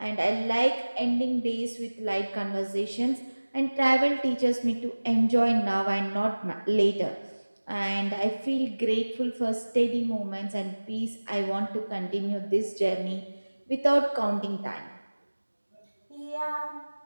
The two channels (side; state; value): both; inverted; correlation -1.00